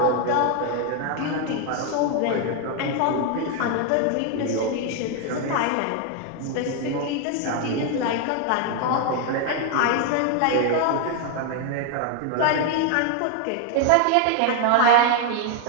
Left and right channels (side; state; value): both; different; correlation 0.01